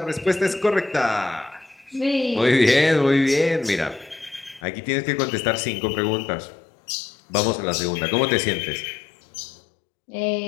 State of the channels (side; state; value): right; drops out; at 4.6 s